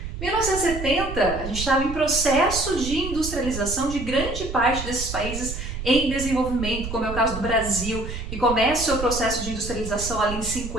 Em 1970, a gente estava em processo de industrialização de grande parte desses países em desenvolvimento, como é o caso do Brasil, que começa o seu processo de industrialização ali em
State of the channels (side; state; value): right; noise; rumble, 7 dB below the sound